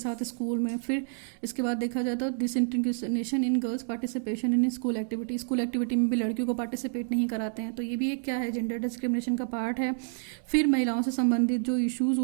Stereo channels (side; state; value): left; silent; digital silence